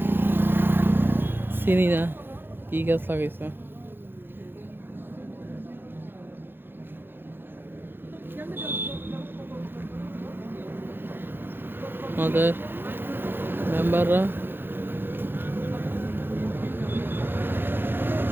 চিনি না কি গাছ লাগাইছে। আমাদের মেম্বাররা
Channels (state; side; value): late; left; 0.10 ms